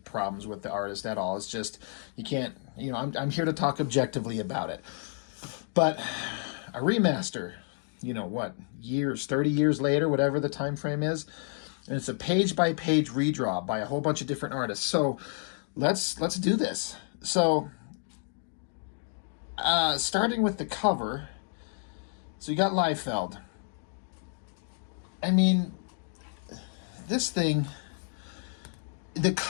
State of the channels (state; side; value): silent; right; 58 dB below the other